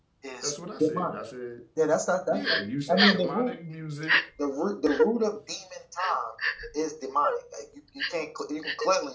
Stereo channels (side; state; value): both; identical; correlation 1.00